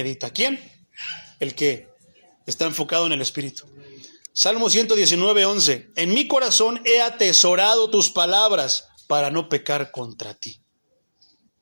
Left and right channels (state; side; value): inverted; both; correlation -1.00